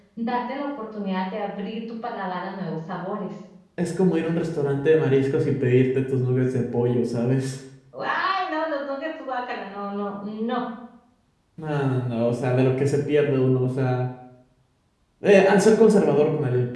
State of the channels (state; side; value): identical; both; correlation 1.00